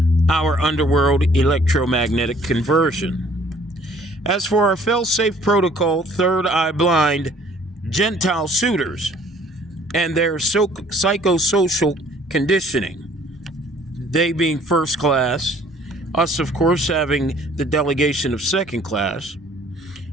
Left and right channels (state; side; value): normal; both; correlation 0.57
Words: our underworld electromagnetic conversion. As for our fail-safe protocol, third eye blind Gentile suitors and their psychosocial conditioning, they being first class, us of course having the delegation of second class,